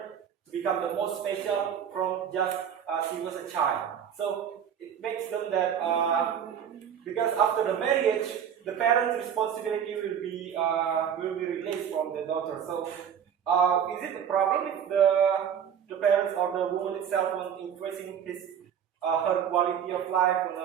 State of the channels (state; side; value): quieter; left; 8.5 dB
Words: to become the most special from just she was a child. So it makes them that because after the marriage, the parents' responsibility will be released from the daughter. So is it a problem if the parents or the woman itself was increasing her quality of life